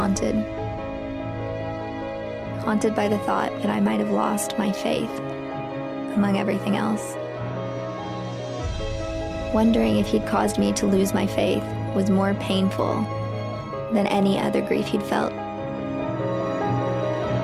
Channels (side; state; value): both; identical; correlation 1.00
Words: by the thought that I might have lost my faith among everything else. Wondering if he'd caused me to lose my faith was more painful than any other grief he'd felt.